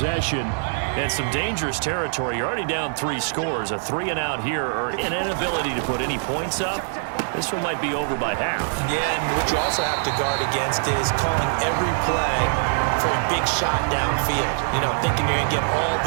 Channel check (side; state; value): left; silent; 60 dB below the other